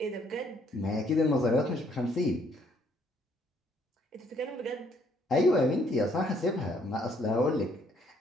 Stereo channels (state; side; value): normal; both; correlation 0.66